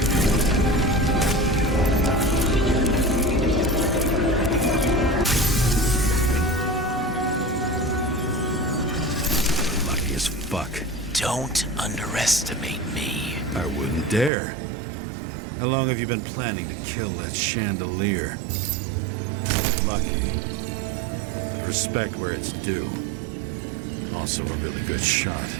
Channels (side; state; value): left; drops out; at 14.3 s